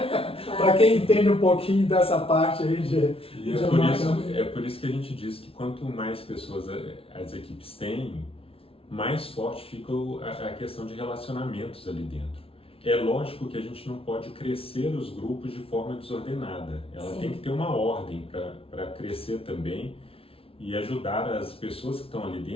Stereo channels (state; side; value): late; right; 0.27 ms